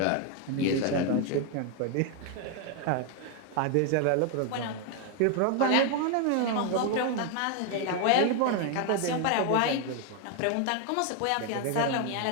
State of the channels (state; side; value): different; both; correlation 0.01